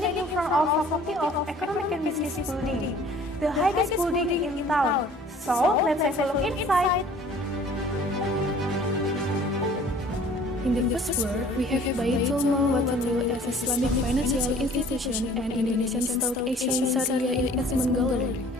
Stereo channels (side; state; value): both; normal; correlation 0.51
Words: in front of Faculty of Economic and Business building, the highest building in town. So, let's have a look inside. In the first floor, we have Baitul Mal Watanu as Islamic financial institution and Indonesian Stock Exchange Syariah Investment Gallery.